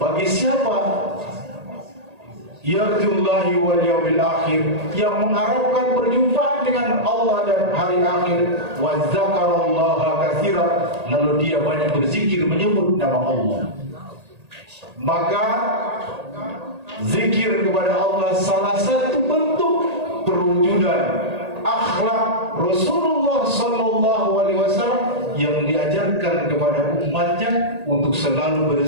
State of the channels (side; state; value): left; late; 1.8 ms